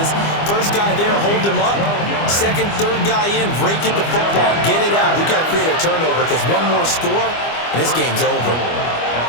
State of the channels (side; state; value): right; late; 25 ms